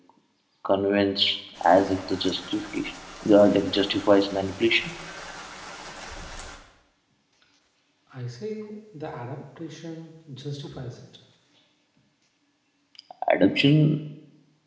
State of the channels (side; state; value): both; identical; correlation 1.00